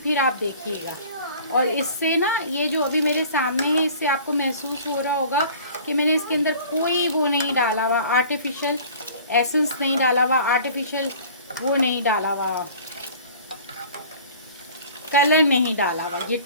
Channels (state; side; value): inverted; both; correlation -0.47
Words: आप देखिएगा। और इससे ना ये जो अभी मेरे सामने है, इससे आपको महसूस हो रहा होगा कि मैंने इसके अंदर कोई वो नहीं डाला हुआ, आर्टिफिशियल एसेंस नहीं डाला हुआ, आर्टिफिशियल वो नहीं डाला हुआ, कलर नहीं डाला हुआ। ये